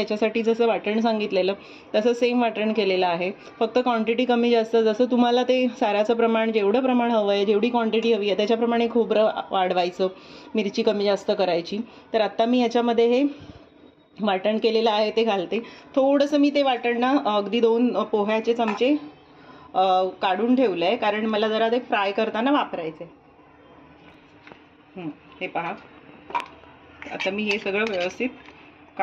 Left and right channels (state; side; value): identical; both; correlation 1.00